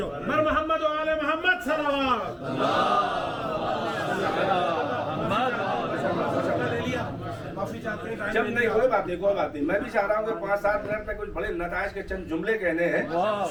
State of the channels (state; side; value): identical; both; correlation 1.00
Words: مر محمد و آل محمد صلوات. جب نہیں کوئی بات نہیں. میں بھی چاہ رہا ہوں کہ 5-7 منٹ میں کچھ بڑے نتائج کے چند جملے کہنے ہیں.